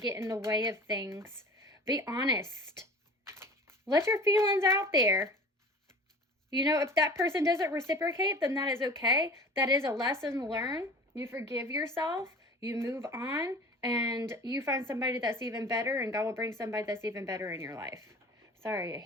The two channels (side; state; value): both; normal; correlation 0.40